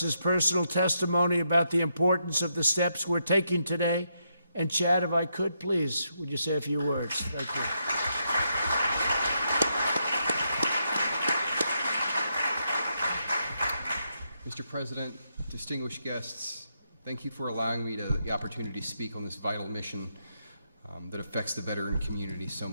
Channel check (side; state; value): both; inverted; correlation -0.81